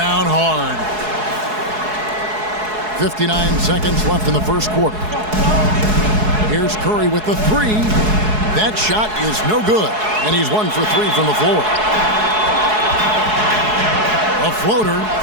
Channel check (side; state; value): left; late; 4.7 ms